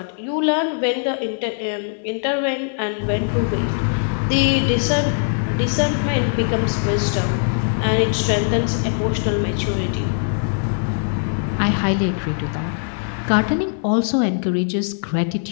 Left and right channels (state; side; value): silent; right; 59 dB below the other